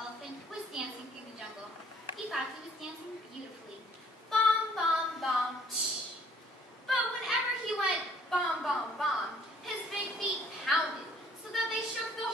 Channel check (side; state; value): both; normal; correlation 0.59